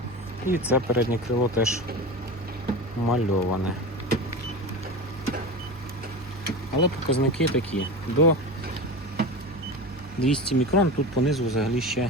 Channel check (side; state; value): both; normal; correlation 0.26